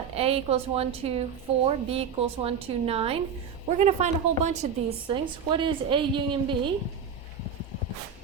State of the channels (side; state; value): left; quieter; 6.9 dB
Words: A equals 1, 2, 4, B equals 1, 2, 9. We're going to find a whole bunch of these things. What is A union B?